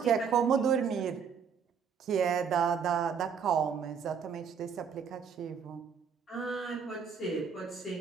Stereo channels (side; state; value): left; quieter; 6.7 dB